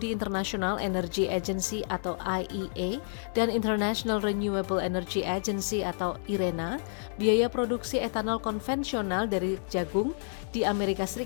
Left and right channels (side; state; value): right; silent; digital silence